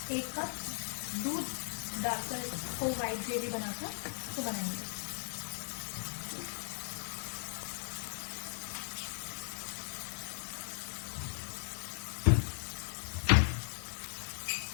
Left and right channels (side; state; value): right; silent; digital silence